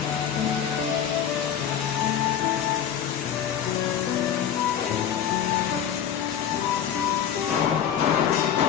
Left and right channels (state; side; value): quieter; right; 9.1 dB